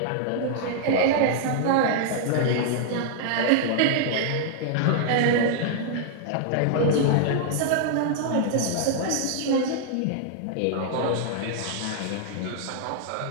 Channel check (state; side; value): different; both; correlation -0.01